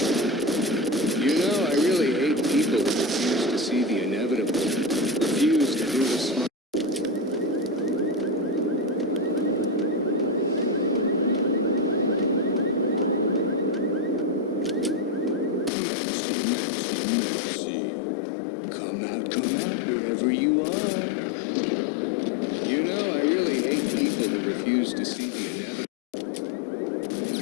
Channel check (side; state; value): right; drops out; at 15.7 s